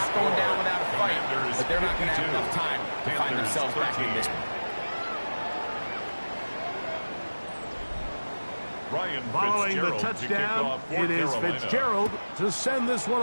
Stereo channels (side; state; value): both; inverted; correlation -1.00